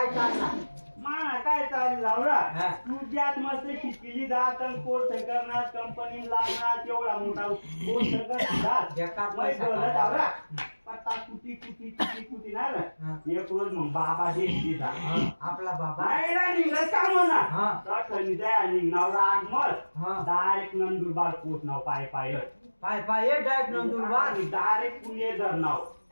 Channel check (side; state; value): both; inverted; correlation -1.00